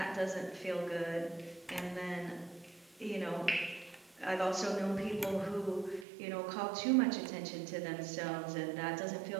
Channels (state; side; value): drops out; left; at 6.1 s